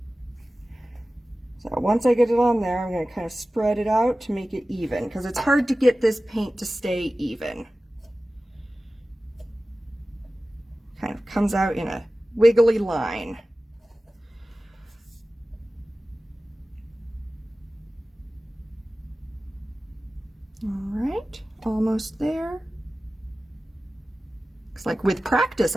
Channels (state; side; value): normal; both; correlation 0.96